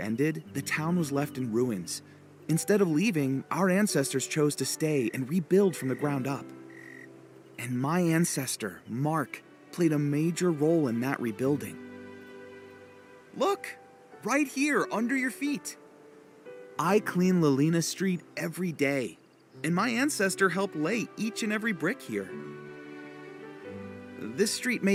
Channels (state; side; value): identical; both; correlation 1.00